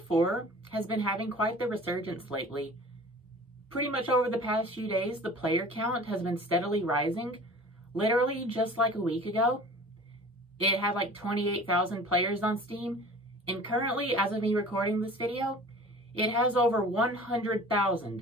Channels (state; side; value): normal; both; correlation 0.43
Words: has been having quite the resurgence lately. Pretty much over the past few days, the player count has been steadily rising. Literally just like a week ago, it had like 28,000 players on Steam, and currently, as of me recording this video, it has over